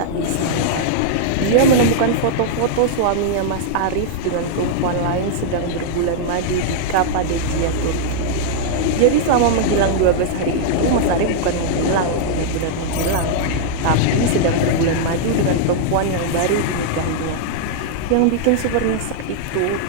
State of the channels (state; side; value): different; both; correlation -0.01